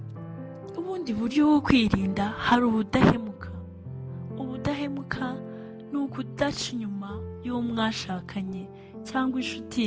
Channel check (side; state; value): both; identical; correlation 1.00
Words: Ubundi buryo bwo kwirinda hari ubudahemuka. Ubudahemuka ni ukudaca inyuma y'uwo mwashakanye cyangwa